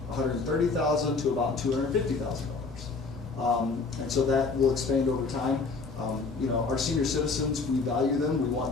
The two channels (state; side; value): quieter; right; 4.2 dB